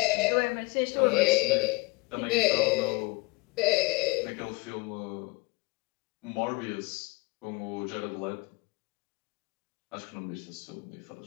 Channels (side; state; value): right; quieter; 24.9 dB